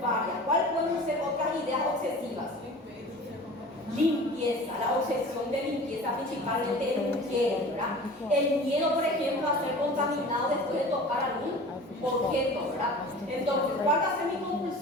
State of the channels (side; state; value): both; normal; correlation 0.40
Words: ¿Cuáles pueden ser otras ideas obsesivas? Limpieza, la obsesión de limpieza, principalmente el mujeres, ¿verdad? El miedo, por ejemplo, a ser contaminado después de tocar algún objeto, ¿verdad? Entonces, ¿cuál va a ser mi